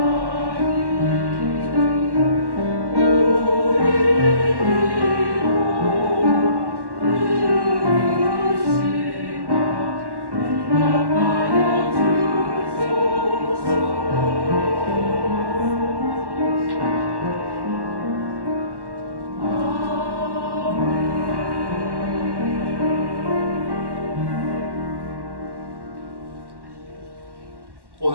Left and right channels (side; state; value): left; late; 1.1 ms